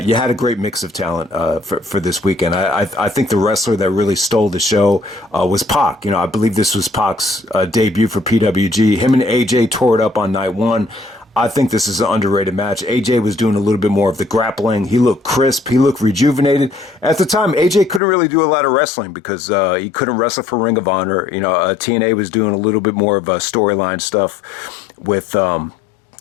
you had a great mix of talent for this weekend. I think the wrestler that really stole the show was Pac. I believe this was Pac's debut for PWG. Him and AJ tore it up on night one. I think this is an underrated match. AJ was doing a little bit more of the grappling. He looked crisp. He looked rejuvenated. At the time, AJ couldn't really do a lot of wrestling because he couldn't wrestle for Ring of Honor. TNA was doing a little bit more of storyline stuff with,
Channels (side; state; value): right; drops out; at 18.0 s